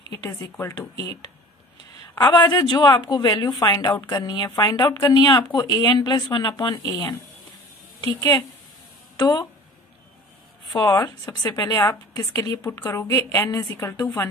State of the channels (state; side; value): normal; both; correlation 0.43